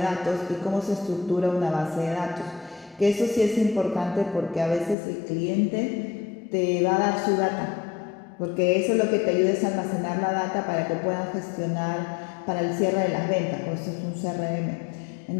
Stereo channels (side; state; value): right; drops out; at 5.0 s